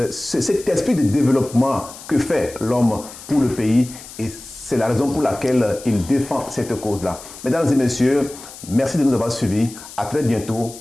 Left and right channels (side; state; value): left; noise; hiss, 16 dB below the sound